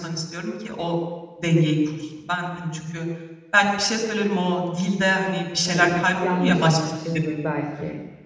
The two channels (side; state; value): both; identical; correlation 1.00